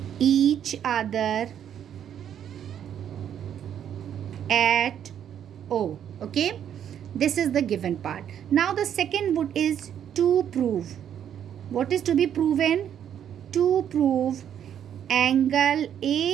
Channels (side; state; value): left; quieter; 9.5 dB